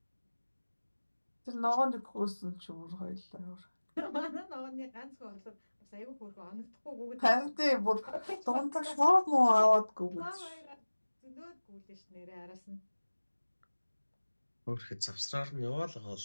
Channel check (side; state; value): both; inverted; correlation -1.00